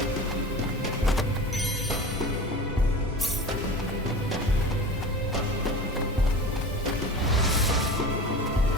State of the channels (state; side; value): normal; both; correlation 0.35